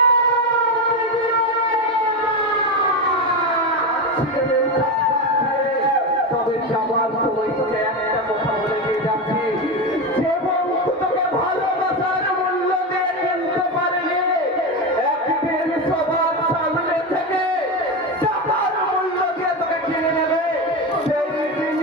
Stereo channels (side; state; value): both; normal; correlation 0.16